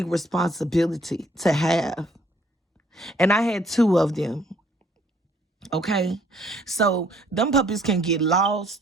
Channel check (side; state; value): both; normal; correlation 0.63